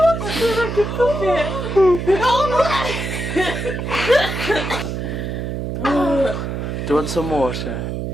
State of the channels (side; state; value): right; noise; hum, 4 dB below the sound